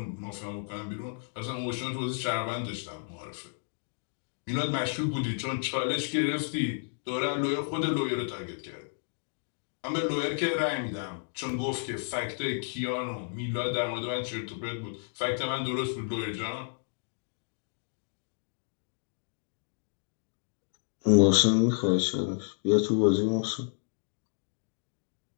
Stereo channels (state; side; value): silent; right; digital silence